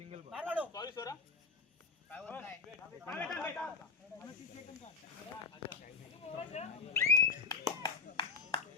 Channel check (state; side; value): quieter; right; 4.7 dB